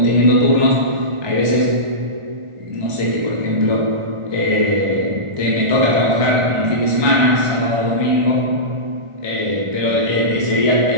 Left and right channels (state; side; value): late; left; 1.4 ms